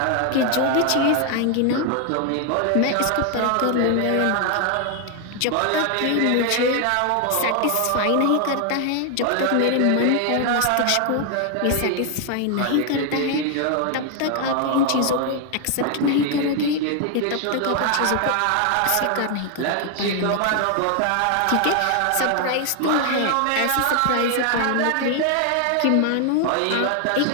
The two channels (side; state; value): both; different; correlation 0.00